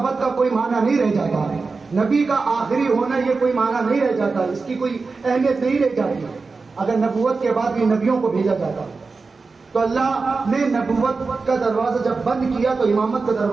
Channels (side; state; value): left; quieter; 4.2 dB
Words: کا کوئی معنی نہیں رہ جاتا ہے. نبی کا آخری ہونا یہ کوئی معنی نہیں رہ جاتا, اس کی کوئی اہمیت نہیں رہ جاتی. اگر نبوت کے بعد بھی نبیوں کو بھیجا جاتا تو اللہ نے نبوت کا دروازہ جب بند کیا تو امامت کا